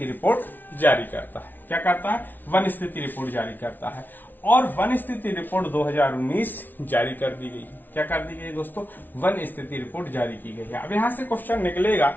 रिपोर्ट जारी करता है। क्या करता है? वन स्थिति रिपोर्ट जारी करता है। और वन स्थिति रिपोर्ट 2019 जारी कर दी गई। क्या कर दी गई दोस्तों? वन स्थिति रिपोर्ट जारी की गई है। अब यहां से क्वेश्चन निकलेगा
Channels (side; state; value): right; late; 0.087 ms